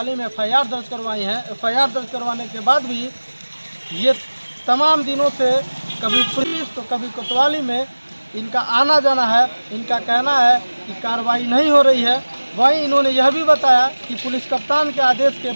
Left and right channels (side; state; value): both; inverted; correlation -1.00